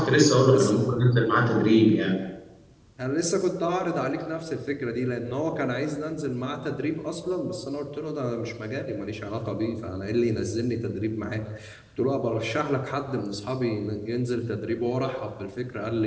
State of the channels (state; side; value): identical; both; correlation 1.00